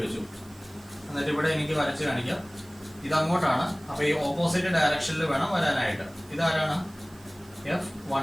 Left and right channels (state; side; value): noise; right; hiss, 25 dB below the sound